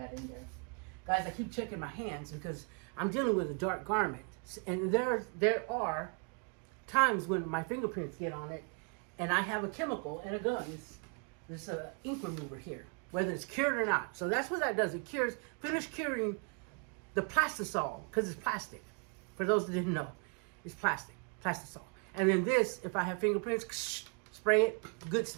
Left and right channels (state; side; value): quieter; left; 38.2 dB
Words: in there. Guys, I keep checking my hands because I'm dealing with a dark garment, and there are times when my fingerprints get on it, and I have a chemical and a gun. This ink remover here, whether it's cured or not. So that's what that does. It finishes curing the plastisol, because it's plastic. For those that didn't know, it's plastisol. And then this, if I have fingerprints, spray it, good